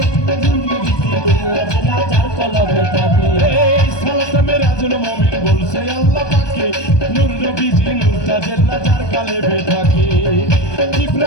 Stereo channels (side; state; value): right; late; 1.2 ms